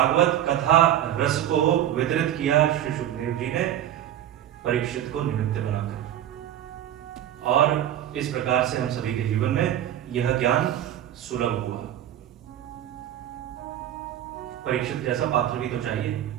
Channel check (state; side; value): quieter; left; 11.5 dB